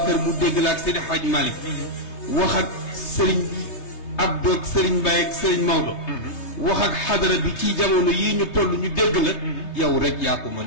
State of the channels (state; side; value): late; right; 3.3 ms